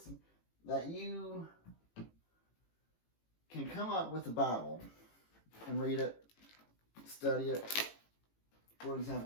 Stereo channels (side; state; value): right; late; 18 ms